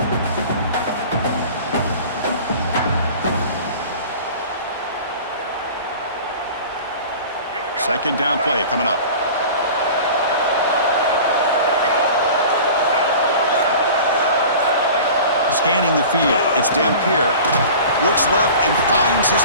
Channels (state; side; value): inverted; both; correlation -0.40